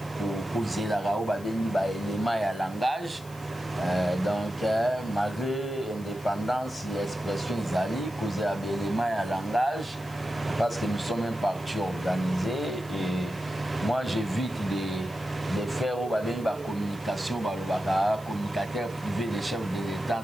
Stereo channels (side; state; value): left; noise; hiss, 22 dB below the sound